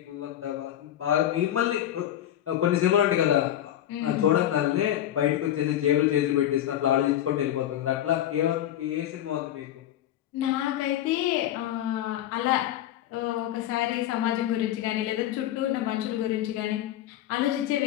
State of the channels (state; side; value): quieter; right; 11.9 dB